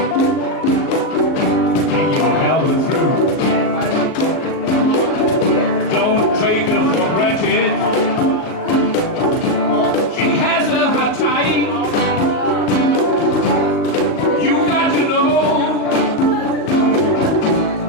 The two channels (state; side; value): late; right; 38 ms